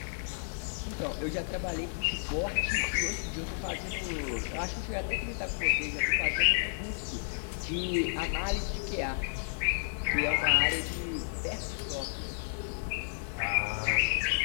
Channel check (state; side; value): silent; right; digital silence